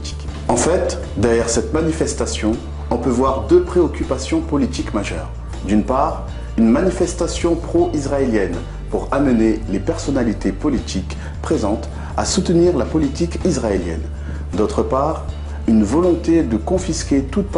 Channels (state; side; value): identical; both; correlation 1.00